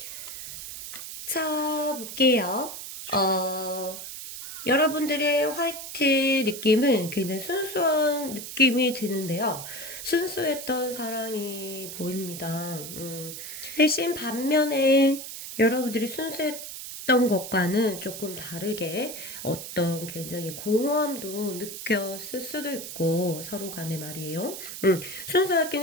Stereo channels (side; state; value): right; noise; hiss, 9 dB below the sound